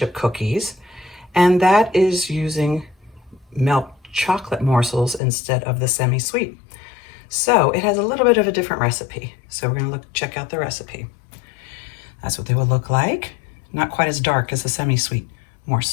cookies, and that is using milk chocolate morsels instead of the semi-sweet. So it has a little bit of a different recipe. So we're gonna check out the recipe. That's what they will look like. Not quite as dark as the semi-sweet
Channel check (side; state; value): right; drops out; at 5.2 s